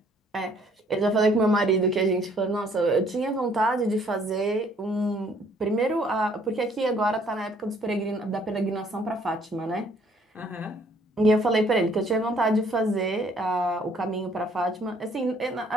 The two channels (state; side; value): normal; both; correlation 0.62